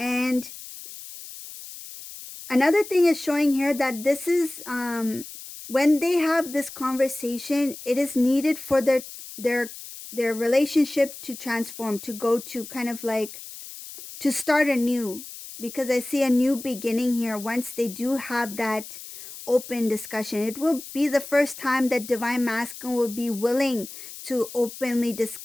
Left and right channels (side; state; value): left; noise; hiss, 13 dB below the sound